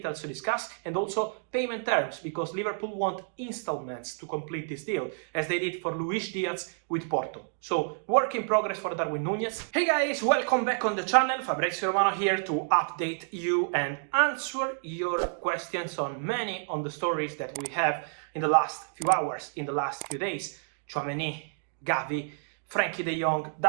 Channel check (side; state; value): left; silent; digital silence